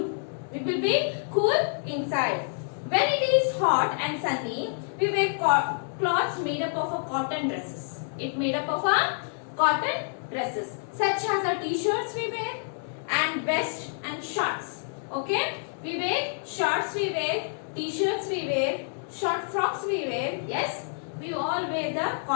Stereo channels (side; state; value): right; silent; digital silence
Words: We will be cool inside. When it is hot and sunny, we wear cloths made up of a cotton dresses. It made up of a cotton dresses, such as a t-shirts we wear and vest and shorts. Okay, we wear shorts, we wear t-shirts, we wear short frocks, we wear. Yes, we all wear the